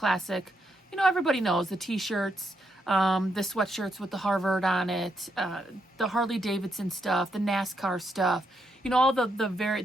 You know, everybody knows the t-shirts, the sweatshirts with the Harvard on it, the Harley Davidson stuff, the NASCAR stuff, you know, all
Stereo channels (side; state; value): both; normal; correlation 0.79